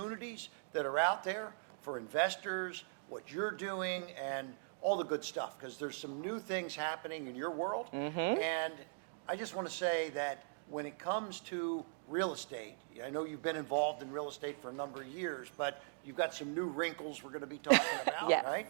that are out there for investors, what you're doing, and all the good stuff, because there's some new things happening in your world. And I just want to say that when it comes to real estate, I know you've been involved in real estate for a number of years, but you've got some new wrinkles we're going to be talking about, Yes, right?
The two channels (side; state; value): left; silent; digital silence